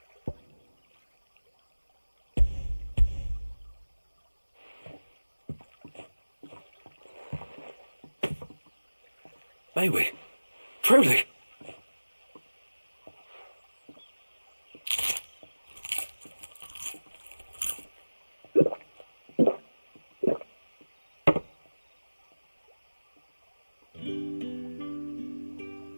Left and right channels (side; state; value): both; inverted; correlation -1.00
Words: May we? Truly?